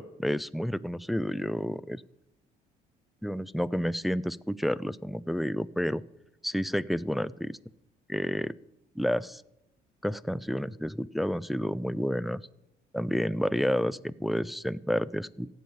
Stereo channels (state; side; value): normal; both; correlation 0.98